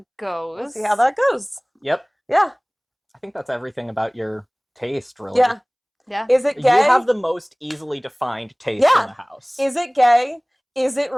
goes. Yep. Yeah. I think that's everything about your taste, really. Yeah. Is it gay? You have the most easily defined taste in the house. Is it gay? Is it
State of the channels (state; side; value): identical; both; correlation 1.00